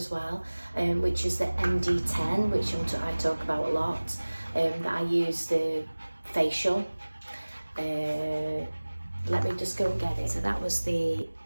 well, which is the MD10, which I talk about a lot, that I use the facial. Let me just go and get it. So that was the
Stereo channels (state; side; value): inverted; both; correlation -1.00